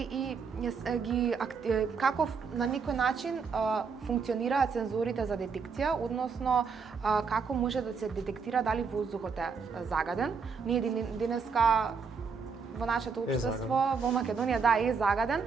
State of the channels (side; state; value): left; quieter; 5.5 dB